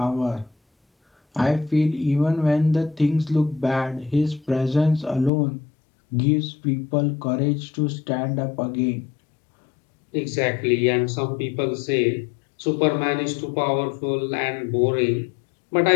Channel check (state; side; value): drops out; right; at 5.3 s